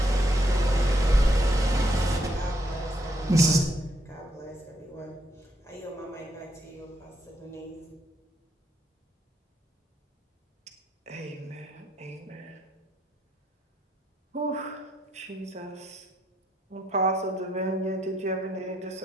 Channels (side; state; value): both; normal; correlation 0.75